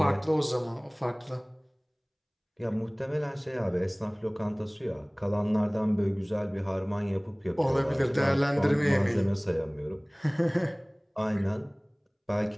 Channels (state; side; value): identical; both; correlation 1.00